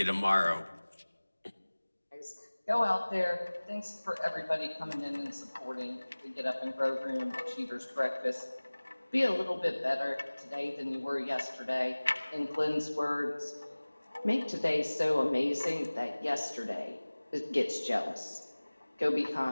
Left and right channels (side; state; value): both; inverted; correlation -1.00